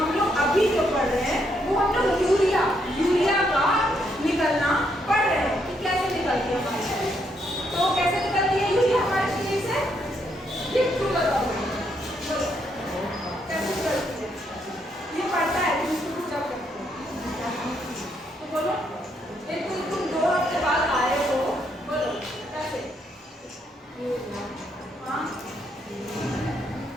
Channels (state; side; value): normal; both; correlation 0.75